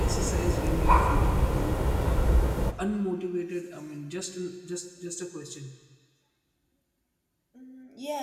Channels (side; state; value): both; identical; correlation 1.00